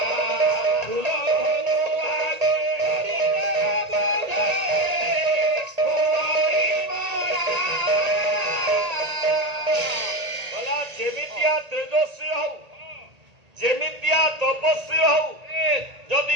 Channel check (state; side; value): late; left; 1.8 ms